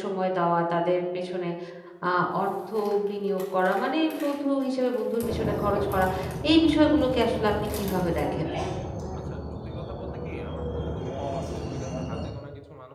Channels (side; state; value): both; identical; correlation 1.00